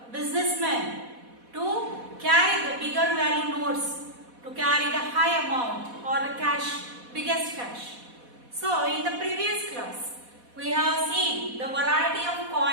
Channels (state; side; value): late; left; 4.1 ms